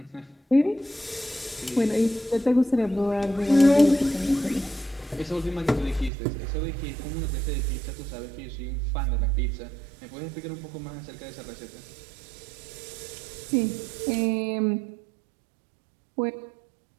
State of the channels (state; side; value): drops out; left; at 6.1 s